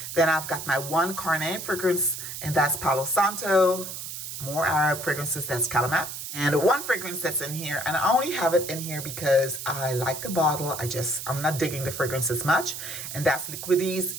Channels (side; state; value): right; noise; hiss, 8 dB below the sound